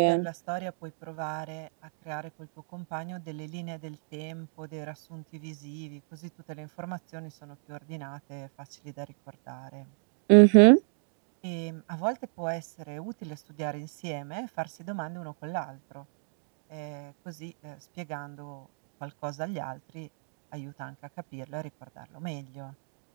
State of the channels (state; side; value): silent; left; digital silence